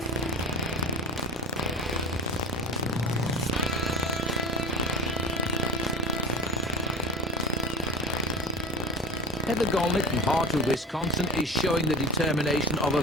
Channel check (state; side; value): normal; both; correlation 0.32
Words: Heather Golnick from Hartwood, Wisconsin is showing the determination of a